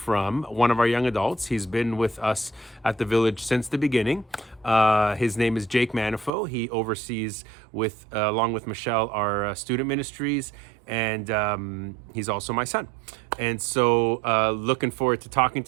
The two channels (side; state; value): left; drops out; at 6.3 s